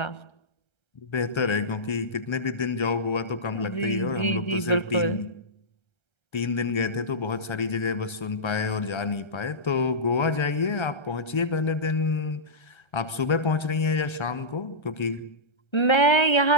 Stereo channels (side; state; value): right; late; 1.3 ms